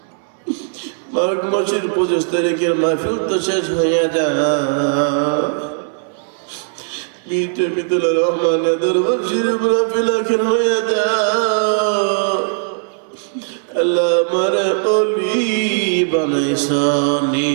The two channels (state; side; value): silent; left; digital silence